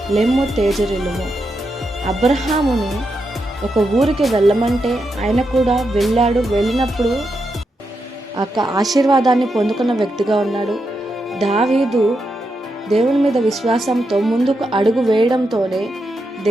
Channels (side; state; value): both; normal; correlation 0.85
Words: లెమ్ము తేజరిల్లుము. అబ్రహాముని ఒక ఊరికి వెళ్ళమంటే ఆయన కూడా వెళ్ళాడు. వెళ్ళినప్పుడు ఆ ఆశీర్వాదాన్ని పొందుకున్న వ్యక్తిగా ఉన్నాడు. దావీదు దేవుని మీద విశ్వాసంతో ముందుకు అడుగు వేయడంతోనే